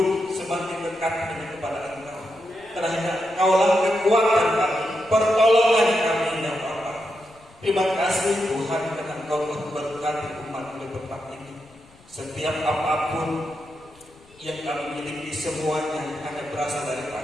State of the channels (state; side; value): noise; left; rumble, 27 dB below the sound